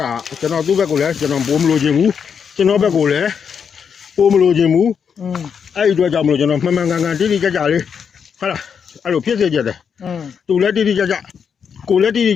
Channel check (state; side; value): quieter; right; 6.9 dB